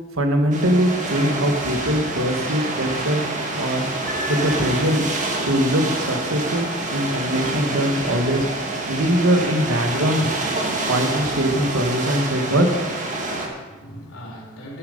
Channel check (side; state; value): both; normal; correlation 0.42